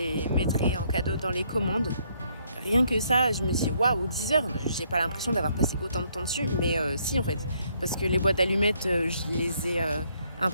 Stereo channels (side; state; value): both; inverted; correlation -0.70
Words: mettrai en cadeau dans les commandes. Rien que ça, je me dis waouh, 10 heures, j'ai pas l'impression d'avoir passé autant de temps dessus, mais si en fait, parce que les boîtes d'allumettes, je les ai